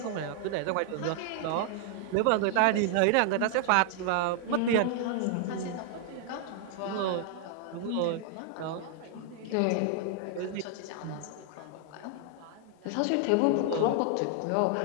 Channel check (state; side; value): different; both; correlation 0.00